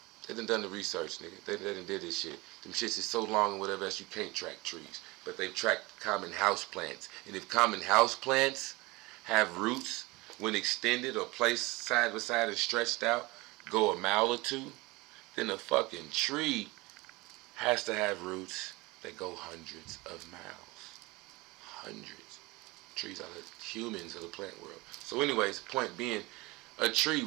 done the research, nigga. They done did this shit. Them shits is so long and whatever else you can't track trees. But they've tracked common house plants. And if common house plants have roots when extended or placed side by side and stretched out, go a mile or two, then a fucking tree has to have roots that go hundreds of miles. Hundreds. Trees are the humans of the plant world. So anyways, point being, a tree,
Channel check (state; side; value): quieter; left; 22.3 dB